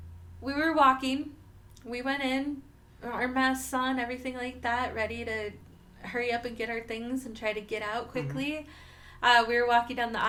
we were walking. We went in, our masks on, everything like that, ready to hurry up and get our things and try to get out quickly. We were walking down the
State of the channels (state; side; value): identical; both; correlation 1.00